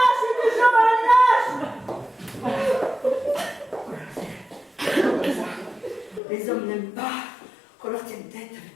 Hugues Jean, un lâche. Les hommes n'aiment pas qu'on leur tienne tête avec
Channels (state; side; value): drops out; right; at 6.2 s